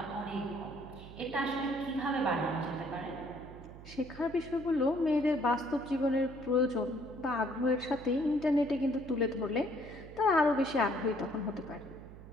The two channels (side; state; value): right; noise; hum, 16 dB below the sound